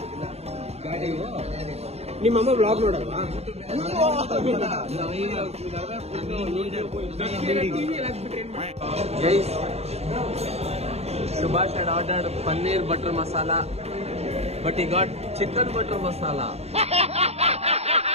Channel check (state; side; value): late; left; 0.30 ms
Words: ನಿಮ್ಮಮ್ಮ ಬ್ಲಾಗ್ ನೋಡಲ್ವಾ? Guys, Subhash had ordered paneer butter masala, but he got chicken butter masala.